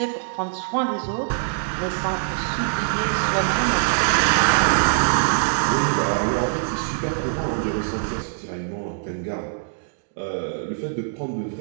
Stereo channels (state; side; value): silent; left; digital silence